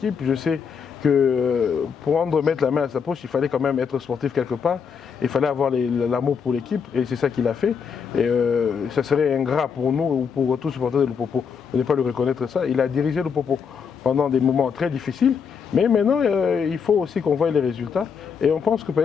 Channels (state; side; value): quieter; right; 6.4 dB